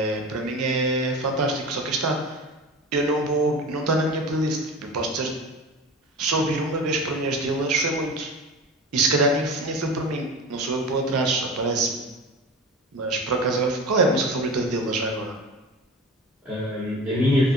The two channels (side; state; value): both; normal; correlation 0.32